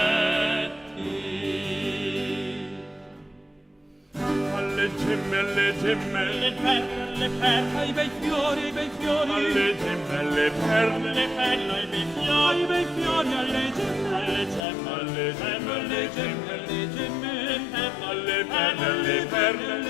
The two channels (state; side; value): drops out; right; at 14.7 s